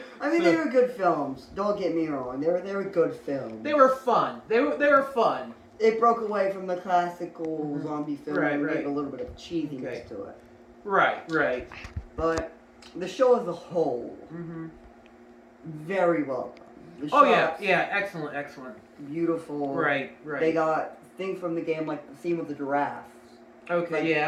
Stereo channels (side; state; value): both; identical; correlation 1.00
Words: I mean, they were good films. Don't get me wrong. They were good films. They were fun. They were fun. It broke away from the classical zombie film and gave a little bit of cheesiness to it. Right. But the show as a whole, very well done. Yeah, excellent. Beautiful. Right. They got things from the game, like the scene with the giraffes. Okay,